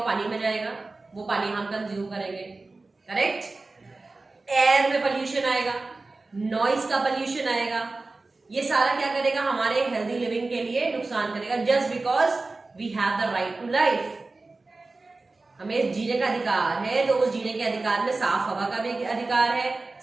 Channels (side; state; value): left; quieter; 3.4 dB